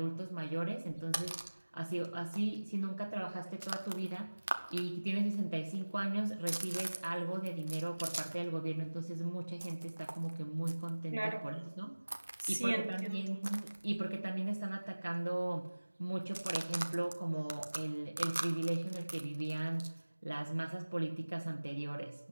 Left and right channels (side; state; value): both; inverted; correlation -1.00